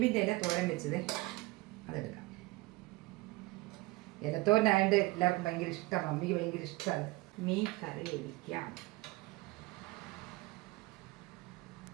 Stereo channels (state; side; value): quieter; left; 21.1 dB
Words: ഇല തോരൻ വെച്ചത് അതെടുക്കാം. ഇലത്തോരനായതുകൊണ്ട് എല്ലാവർക്കും ഭയങ്കര ഇഷ്ടമാണ്, മമ്മിക്ക് ഭയങ്കര ഇഷ്ടമാണ്. മീൻ കറി ഒഴിക്കാം.